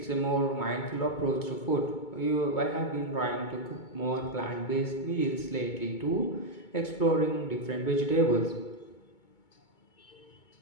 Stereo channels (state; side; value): late; right; 2.2 ms